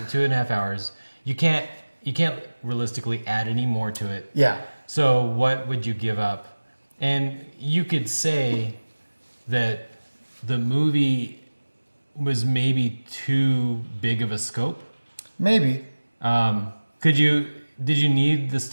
hours. You can't realistically add any more to it. Yeah. So what would you give up? And you could say that the movie was maybe too big of a scope. Maybe. Did you need the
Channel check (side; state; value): both; inverted; correlation -1.00